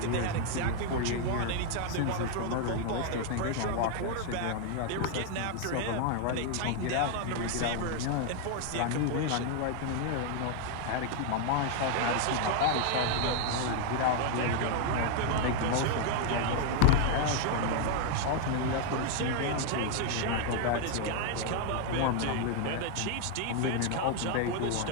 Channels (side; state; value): both; different; correlation 0.00